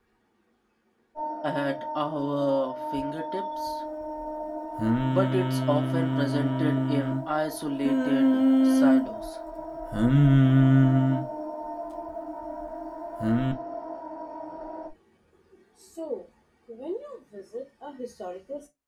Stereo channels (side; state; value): both; identical; correlation 1.00